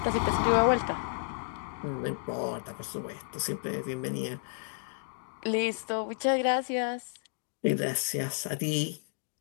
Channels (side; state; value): right; silent; digital silence